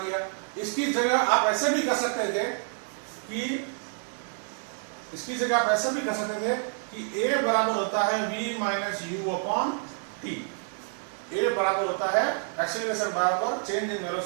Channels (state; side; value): silent; left; 55 dB below the other